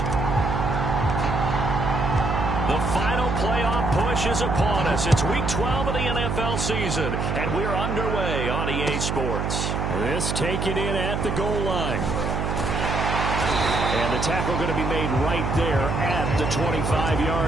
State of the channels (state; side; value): noise; right; hum, 1 dB below the sound